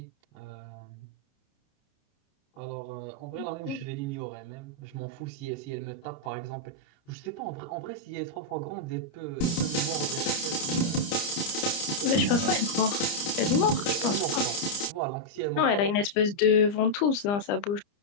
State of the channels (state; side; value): late; right; 29 ms